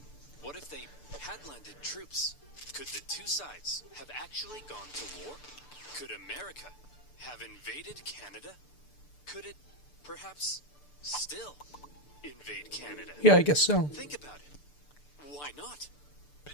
What if they had landed troops? Could the two sides have actually gone to war? Could America have invaded Canada? Could it, perhaps, still invade Canada? Yeah, I guess so. Think about it. Why not?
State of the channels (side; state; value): right; late; 6.8 ms